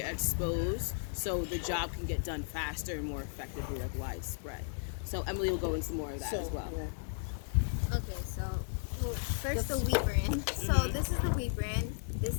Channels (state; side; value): silent; right; digital silence